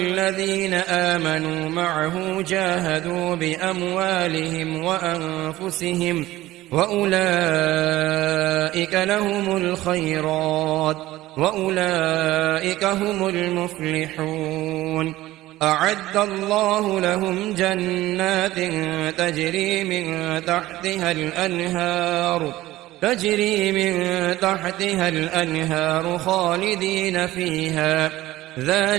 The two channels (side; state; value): left; quieter; 16.7 dB